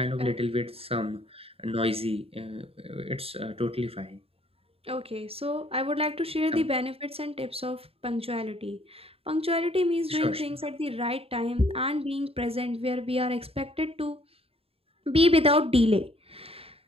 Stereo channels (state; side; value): late; left; 0.28 ms